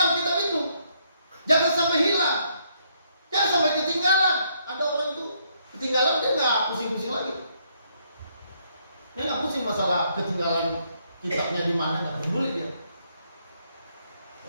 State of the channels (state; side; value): inverted; both; correlation -0.72